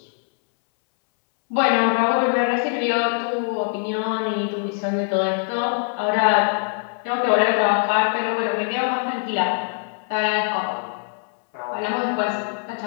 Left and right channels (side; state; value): right; silent; 63 dB below the other